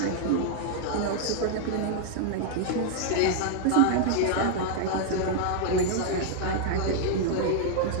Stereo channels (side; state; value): both; different; correlation 0.00